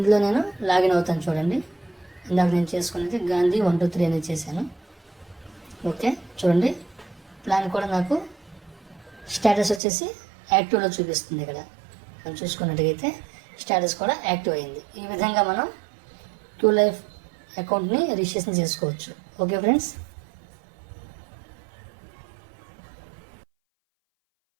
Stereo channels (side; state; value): left; drops out; at 9.8 s